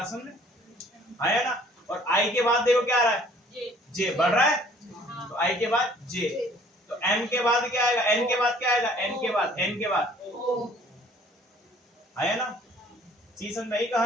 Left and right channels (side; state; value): both; normal; correlation 0.55